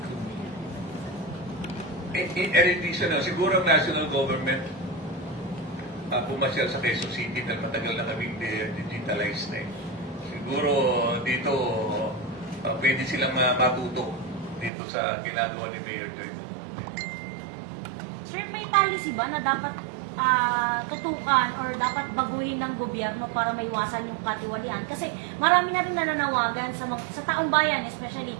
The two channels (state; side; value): drops out; left; at 14.7 s